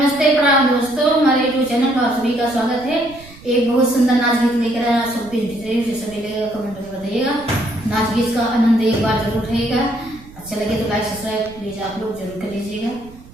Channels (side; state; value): right; noise; rumble, 21 dB below the sound